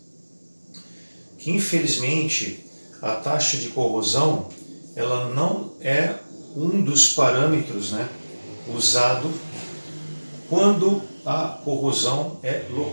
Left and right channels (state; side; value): inverted; both; correlation -1.00